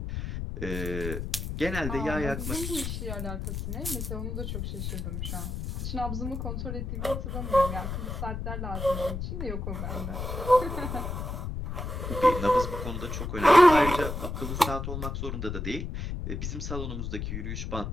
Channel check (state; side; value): noise; left; rumble, 4 dB below the sound